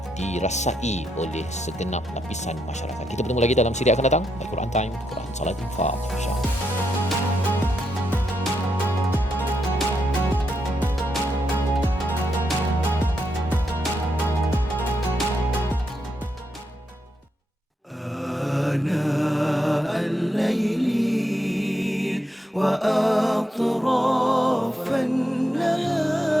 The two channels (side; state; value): both; normal; correlation 0.81